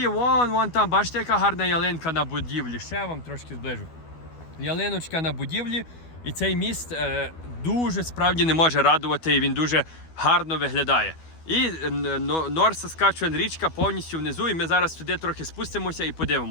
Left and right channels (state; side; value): late; right; 12 ms